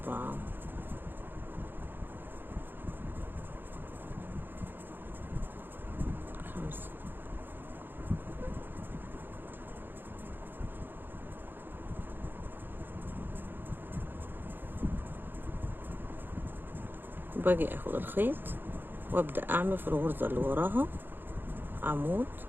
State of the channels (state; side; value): late; left; 0.097 ms